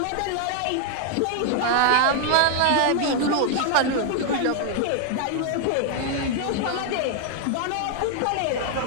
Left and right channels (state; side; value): different; both; correlation 0.00